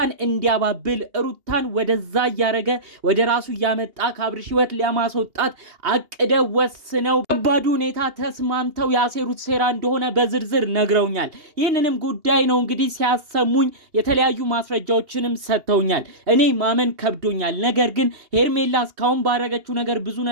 እንዲያባብል ሩታን ወደዛ እያረገ ወደ ራሱ እያመጣ ከአብርሽ ህይወት ሊያማስወጣት አቅደው ወስነው ከባዱ ሁኔታ ተስማምተው ያሴሩት ሴራ እንደሆነ በዝርዝር ነግረውኛል። ይህንንም ጉዳይ ነው እንግዲህ ሲያሰሙኝ የተለያዩ ማስረጃዎችንም ሰጥተውኛል። እኔ ማመን ከብዶኛል። ነገር ግን ሄርሜላ እስካሁን ባረገችው ነገር ብዙ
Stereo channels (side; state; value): left; late; 2.8 ms